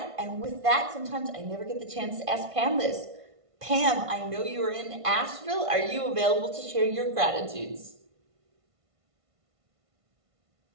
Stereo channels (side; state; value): left; late; 1.5 ms